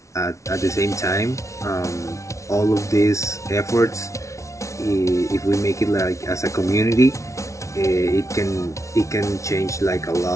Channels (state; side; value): late; right; 0.14 ms